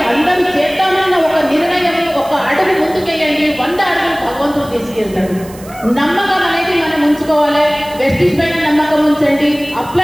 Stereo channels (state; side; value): noise; right; hiss, 20 dB below the sound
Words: అందరూ చేద్దామన్న ఒక నిర్ణయం, ఒక అడుగు ముందుకెళ్ళండి. 100 అడుగులు భగవంతుడు తీసుకెళ్తాడు. నమ్మకం అనేది మనం ఉంచుకోవాలి. వెస్టిజ్ పైన నమ్మకం ఉంచండి,